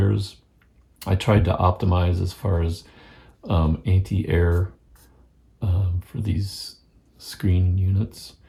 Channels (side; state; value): both; identical; correlation 1.00